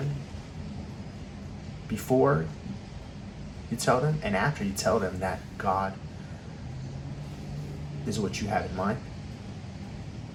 before you tell them and after you tell them that God is what you have in mind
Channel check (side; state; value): both; identical; correlation 1.00